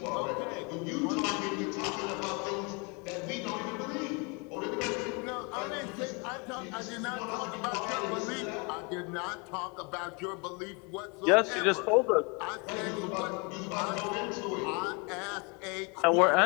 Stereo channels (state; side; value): quieter; right; 31.7 dB